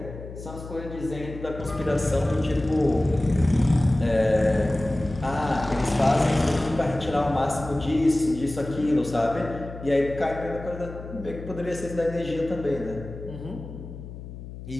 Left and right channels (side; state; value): left; noise; hum, 12 dB below the sound